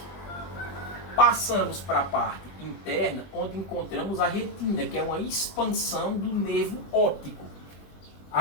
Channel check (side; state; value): right; late; 20 ms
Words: Passamos para a parte interna, onde encontramos a retina, que é uma expansão do nervo óptico.